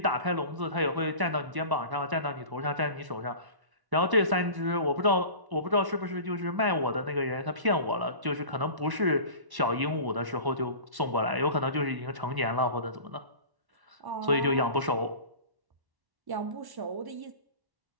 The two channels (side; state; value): left; late; 1.1 ms